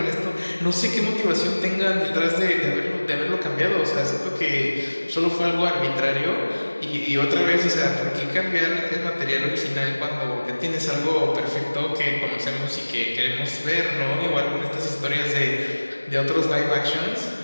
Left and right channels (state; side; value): inverted; both; correlation -1.00